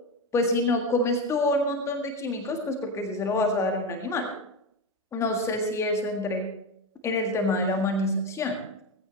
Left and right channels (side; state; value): both; normal; correlation 0.17